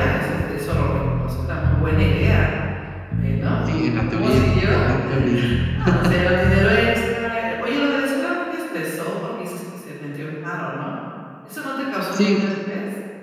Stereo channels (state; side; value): identical; both; correlation 1.00